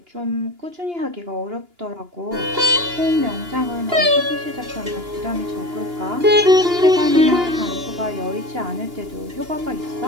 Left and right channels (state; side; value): late; left; 2.9 ms